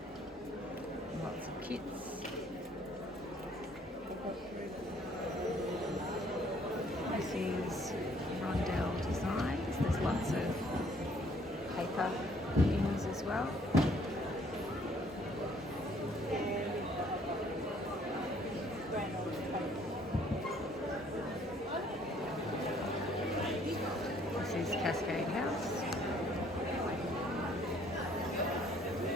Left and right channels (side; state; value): both; normal; correlation 0.61